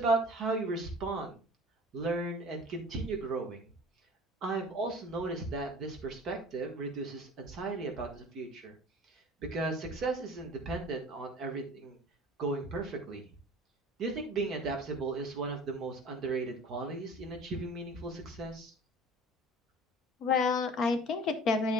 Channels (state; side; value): normal; both; correlation 0.43